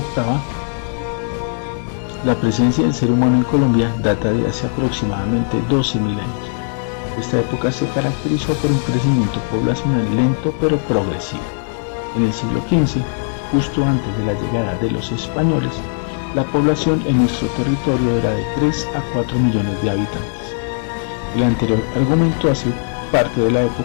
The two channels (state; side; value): silent; right; digital silence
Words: la presencia del ser humano en Colombia data de hace aproximadamente 12.000 años. Esta época se caracterizó por un crecimiento poblacional lento pero progresivo. En el siglo XV, justo antes de la llegada de los españoles, la población en nuestro territorio era de 3 a 4 millones de habitantes. El anterior argumento hace parte de la